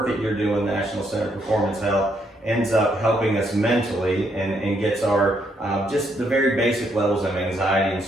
that you're doing, National Center for Performance Health, ends up helping us mentally and gets our just the very basic levels of anxiety and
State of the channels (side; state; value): both; normal; correlation 0.74